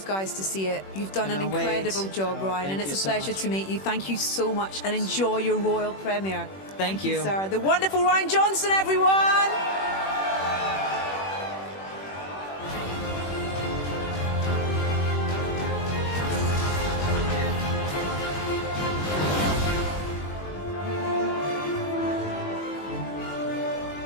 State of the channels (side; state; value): right; late; 21 ms